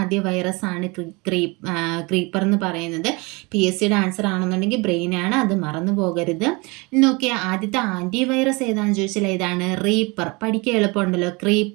വൈറസ് ആണ് ക്രീപ്പർ എന്ന് പറയുന്നത്. PSCയുടെ ആൻസർ ആണെന്നുണ്ടെങ്കിൽ ബ്രെയിനാണ്, അത് മറന്നു പോകരുത്. നോക്കിയാൽ ആദ്യത്തെ ആൻറ്റിവൈറസ് ഏതാണെന്ന് ചോദിച്ചാൽ ഏതാണ്, റീപ്പർ. പഠിക്കാൻ എളുപ്പമുണ്ടല്ലോ,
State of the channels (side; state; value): left; quieter; 26.9 dB